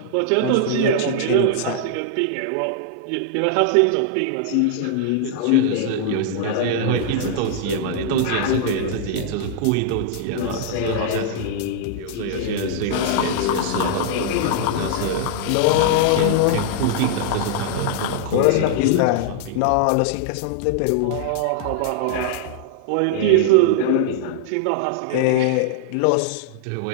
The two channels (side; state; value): both; different; correlation -0.01